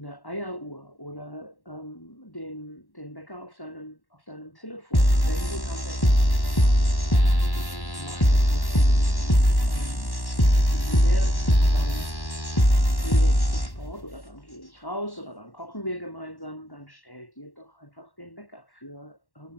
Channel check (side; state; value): right; late; 1.1 ms